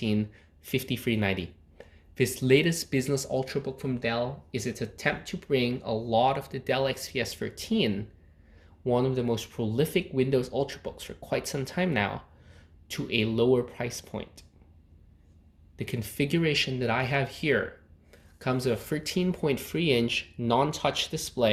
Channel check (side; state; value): both; identical; correlation 1.00